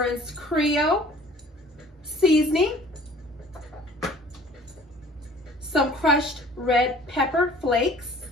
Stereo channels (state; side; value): normal; both; correlation 0.50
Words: Creole seasoning, some crushed red pepper flakes,